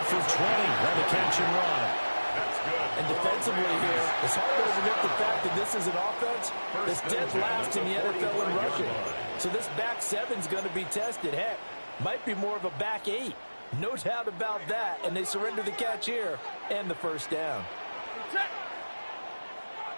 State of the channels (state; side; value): inverted; both; correlation -1.00